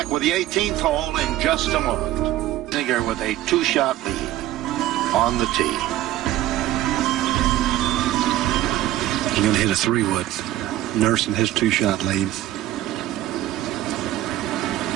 with the 18th hole in just a moment. Azinger with a 2-shot lead on the tee. He's going to hit a 3-wood, nursing his 2-shot lead.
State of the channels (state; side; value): quieter; left; 14.2 dB